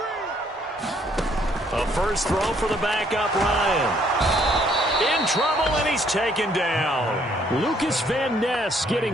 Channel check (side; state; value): both; normal; correlation 0.66